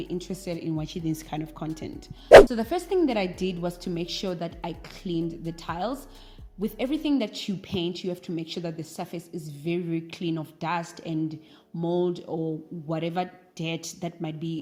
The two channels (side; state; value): both; identical; correlation 1.00